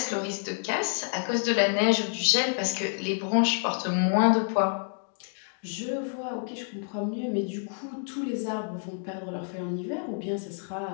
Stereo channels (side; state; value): right; silent; 59 dB below the other